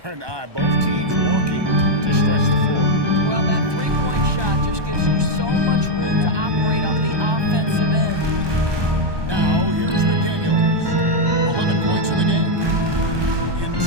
an eye. Both teams working to stretch the floor. Well, that three-point shot just gives you so much room to operate on the offensive end. Now, here's McDaniels. 11 points in the game.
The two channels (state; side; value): late; left; 1.2 ms